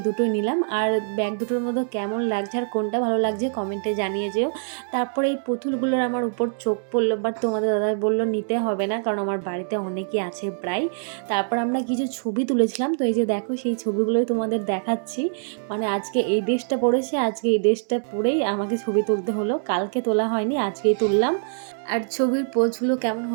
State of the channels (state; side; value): silent; left; digital silence